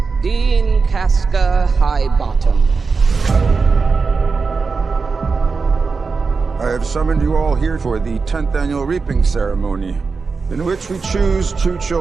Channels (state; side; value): quieter; left; 4.7 dB